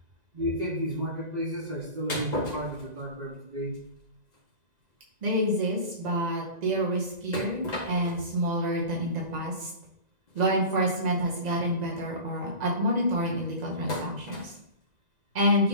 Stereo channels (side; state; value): left; late; 1.9 ms